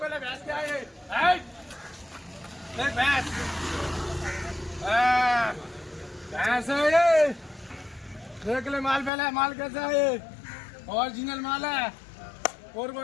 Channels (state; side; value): drops out; right; at 9.1 s